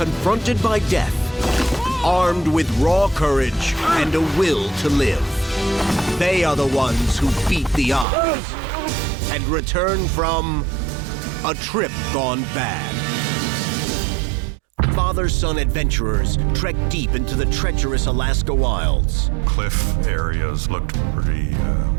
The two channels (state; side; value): drops out; left; at 8.1 s